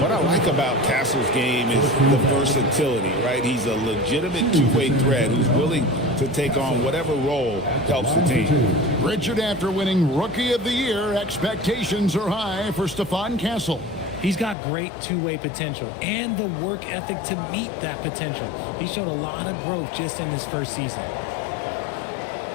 what I like about Castle's game is the versatility, right? He's a legitimate two-way threat who's willing to take on whatever role helps the team. Richard, after winning Rookie of the Year, expectations are high for Stephon Castle. He's got great two-way potential and the work ethic to meet that potential. He showed a lot of growth just in his first season.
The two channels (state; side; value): drops out; right; at 14.6 s